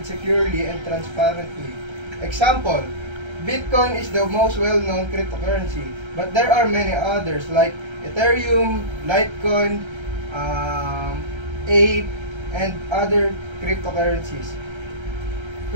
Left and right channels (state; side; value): late; left; 1.3 ms